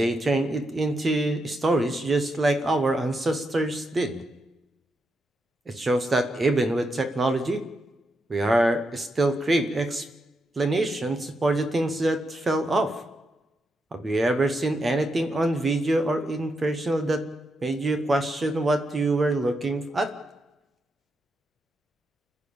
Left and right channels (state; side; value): normal; both; correlation 0.83